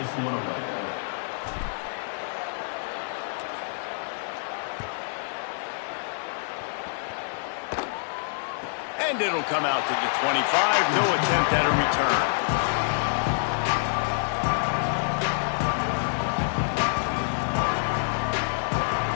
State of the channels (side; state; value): right; silent; digital silence